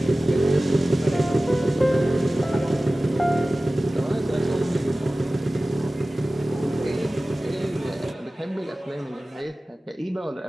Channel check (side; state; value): both; normal; correlation 0.96